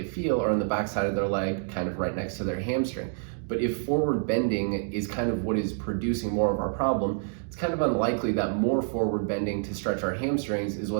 feel are on the backside of their leg, kind of right next to their hamstring. But if forward bending is kind of what is producing more of our problem, it's kind of unlikely that more forward bending to stretch our hamstrings is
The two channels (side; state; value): left; silent; digital silence